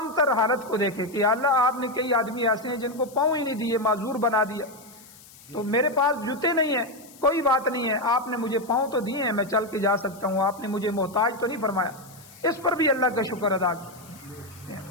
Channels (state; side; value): noise; left; hiss, 22 dB below the sound